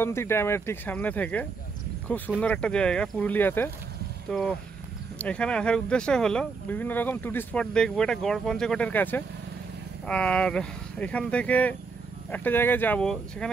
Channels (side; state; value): left; quieter; 4.6 dB